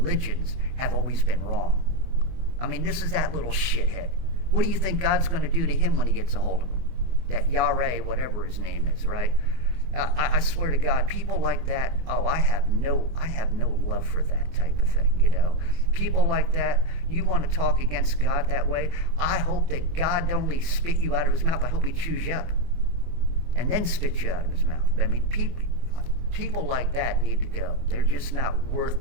have always been wrong. I mean, this is that little shithead. What do you think God's going to do to him when he gets a hold of him? That Yahweh, whatever his name is, right? I swear to God, people like that, I have no love for that type of thing, People like that, you want to talk against God that way, I hope that God don't only spit you out of his mouth, I hope he chews you up and then spits you out of his mouth. I mean, people like that need to go. They're just not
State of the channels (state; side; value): late; left; 24 ms